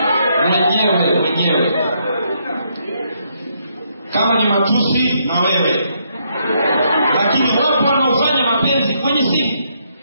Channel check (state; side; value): inverted; both; correlation -0.74